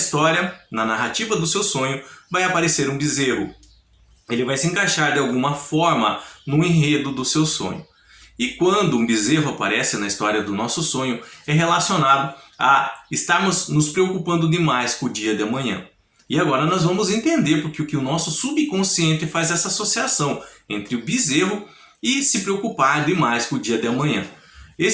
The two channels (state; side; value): identical; both; correlation 1.00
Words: na narrativa do seu sonho, vai aparecer um bezerro. Ele vai se encaixar de alguma forma no enredo do seu sonho. E quando um bezerro aparece na história do nosso sonho, é relacionado a estarmos nos preocupando demais com o dia de amanhã. E agora nós vamos entender porque o nosso subconsciente faz essa associação entre o bezerro e se preocupar demais com o dia de amanhã.